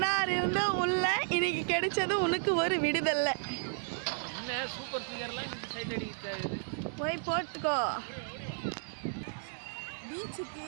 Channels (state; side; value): silent; left; digital silence